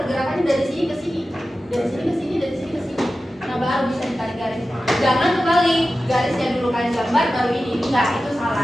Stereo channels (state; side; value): normal; both; correlation 0.94